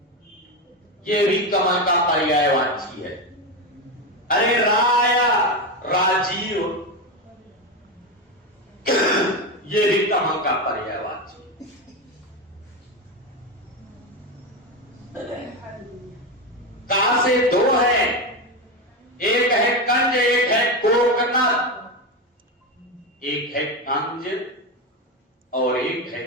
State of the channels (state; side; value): normal; both; correlation 0.15